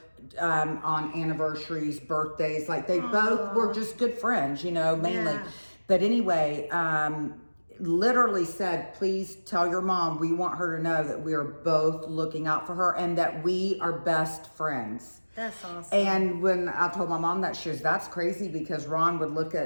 on anniversaries, birthdays. Like they both were just good friends, you know, mainly. Yeah. But anyway, literally said, please tell your mom we want her to know that we are both looking out for her and that we are best friends. That's awesome. And when I told my mom that, she was, that's crazy, because Ron would look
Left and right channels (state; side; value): inverted; both; correlation -1.00